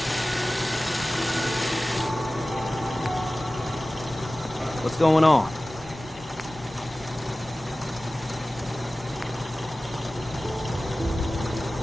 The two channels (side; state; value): both; normal; correlation 0.97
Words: What's going on?